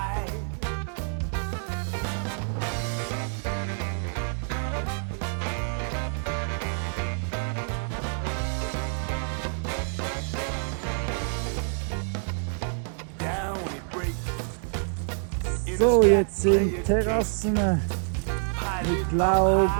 Down it breaks. So, jetzt sind Terrassen mit Laub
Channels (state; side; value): silent; left; 60 dB below the other